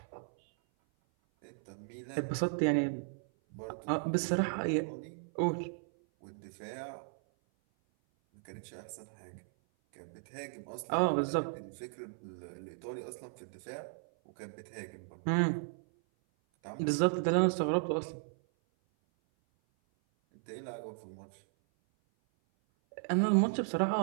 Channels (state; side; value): silent; left; 54 dB below the other